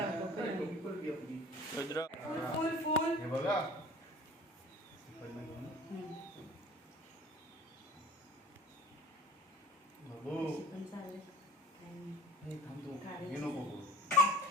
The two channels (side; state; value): both; normal; correlation 0.44